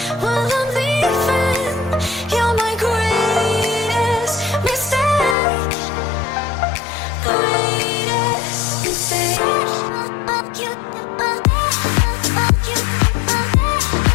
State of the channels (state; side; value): drops out; right; at 5.4 s